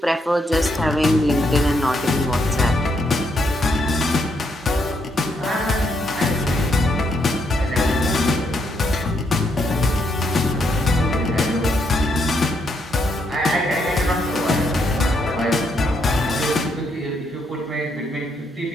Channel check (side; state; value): both; normal; correlation 0.76